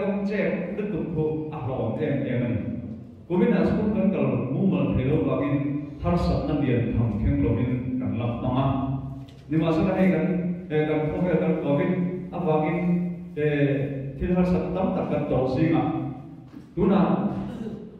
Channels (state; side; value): identical; both; correlation 1.00